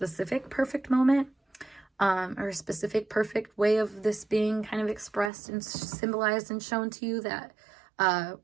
perfect moment, or a specific perfect way of this being kind of expressed and symbolized and shown to you, that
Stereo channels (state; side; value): drops out; left; at 5.3 s